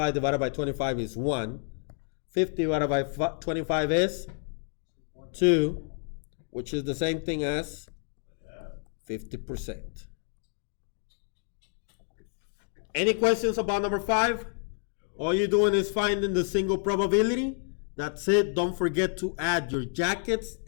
divided by 25 is 1. 50 divided by 25 is 2, which is the same thing as 50%. Any questions about number 5? All you're doing is finding the single probability. That's it. Don't forget to add your jackets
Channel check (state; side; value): silent; right; 58 dB below the other